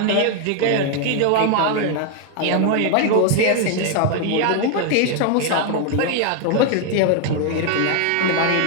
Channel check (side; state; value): both; different; correlation 0.00